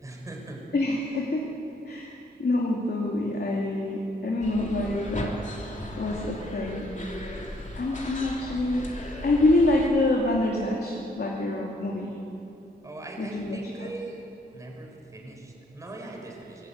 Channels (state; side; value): normal; both; correlation 0.67